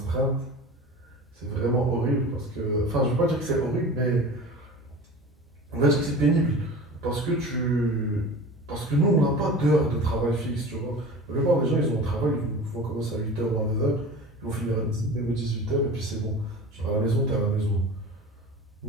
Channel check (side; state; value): both; normal; correlation 0.36